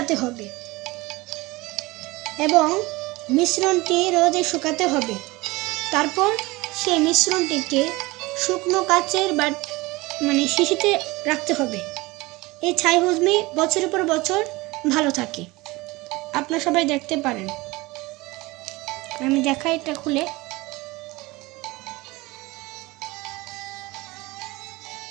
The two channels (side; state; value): left; quieter; 21.9 dB